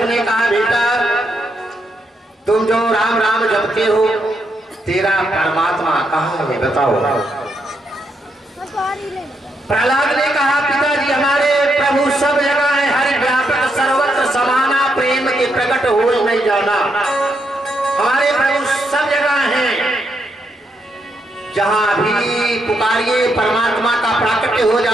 ने कहा, बेटा तुम जो राम राम जपते हो, तेरा परमात्मा कहाँ है बताओ। प्रहलाद ने कहा, पिताजी हमारे प्रभु सब जगह है, हर व्यापक सर्वत्र समाना प्रेम के प्रकट हो नहीं जाना। हमारे प्रभु सब जगह हैं, जहां भी पुकारिए परमात्मा का प्राकट्य हो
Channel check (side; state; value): both; normal; correlation 0.79